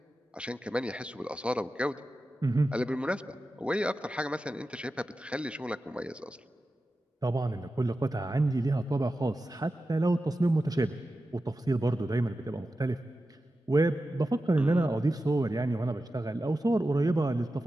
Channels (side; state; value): both; normal; correlation 0.92